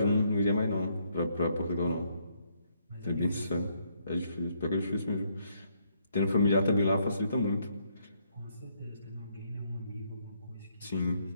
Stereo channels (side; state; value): both; inverted; correlation -0.72